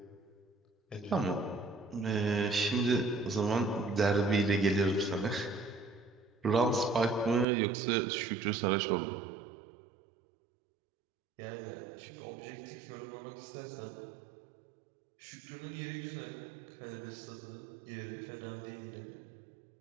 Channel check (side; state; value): left; drops out; at 7.5 s